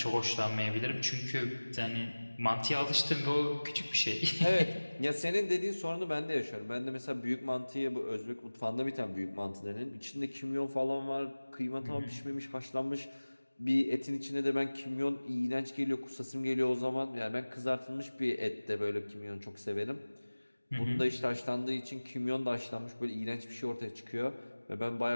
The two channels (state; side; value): inverted; both; correlation -1.00